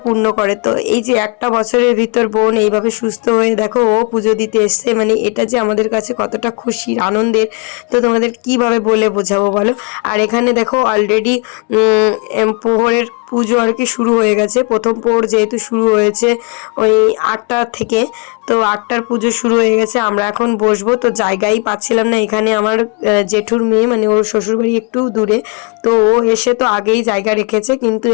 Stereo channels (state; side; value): quieter; right; 32.6 dB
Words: পূর্ণ করে। তো এই যে একটা বছরের ভিতর বোন এইভাবে সুস্থ হয়ে দেখো ও পুজো দিতে এসছে, মানে এটা যে আমাদের কাছে কতটা খুশির আনন্দের, তো তোমাদের কিভাবে বলে বোঝাবো বলো। আর এখানে দেখো অলরেডি প্রহরের পুজো আর কি শুরু হয়ে গেছে। প্রথম প্রহর যেহেতু শুরু হয়েছে ওই 8টা থেকে, তো 8টার পুজো শুরু হয়ে গেছে। আমরা এখন বসবো, তো জায়গাই পাচ্ছিলাম না। এখানে আমার জেঠুর মেয়ে, মানে ওর শ্বশুরবাড়ি একটু দূরে, তো ও এসে তো আগেই জায়গা রেখেছে, কিন্তু